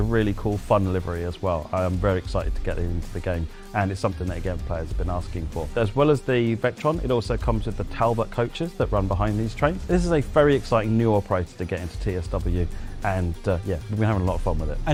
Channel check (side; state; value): both; identical; correlation 1.00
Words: really cool, fun livery as well. I am very excited to get it into the game, and it's something that, again, players have been asking for. As well as the Vectron, it also comes with the Talbot coaches that run behind these trains. This is a very exciting new operator to get into TSW, and yeah, we've been having a lot of fun with it.